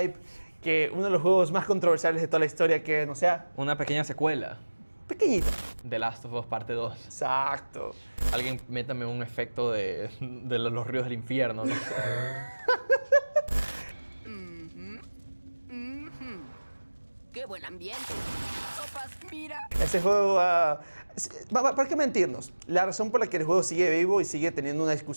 que uno de los juegos más controversiales de toda la historia que no sea Una pequeña secuela, pequeñito? The Last of Us Parte 2. Exacto. Alguien métame un efecto de los ríos del infierno, no sé. ¡Qué buen ambiente! Sopas, mira. Ese juego, ¿para qué mentirnos? La razón por la que el juego sigue vivo y sigue teniendo una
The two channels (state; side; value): inverted; both; correlation -1.00